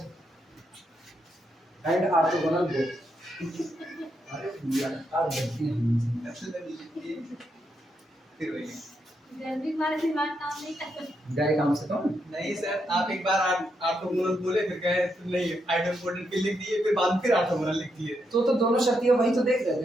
and orthogonal both अरे यार गलती है फिर वही जल्दी हमारे दिमाग काम नहीं करता। डायरेक्ट काम से तो नहीं सर, आप एक बार ऑर्थोगोनल बोले, फिर कहे नहीं आइडेंटिटी पे लिख दिए, फिर बाद में फिर ऑर्थोगोनल लिख दिए। तो दोनों शर्तियां वही तो देख रहे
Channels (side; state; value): both; normal; correlation 0.80